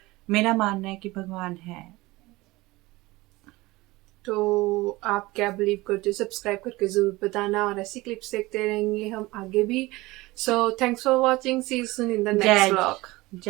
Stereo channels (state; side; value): quieter; left; 20.6 dB